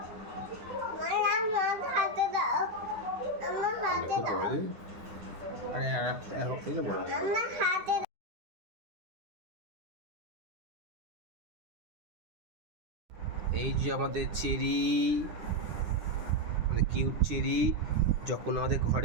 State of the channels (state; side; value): late; left; 9.8 ms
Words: আমার হাতে দাও। আমার হাতে খুব দাও। বড় আরে আর থেকে বড় আমার হাতে এই যে আমাদের চেরি, মানে কিউট চেরি যখন আমাদের